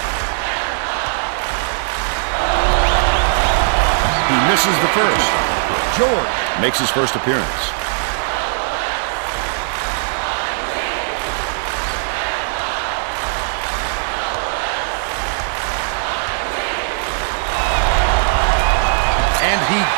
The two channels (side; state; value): left; silent; digital silence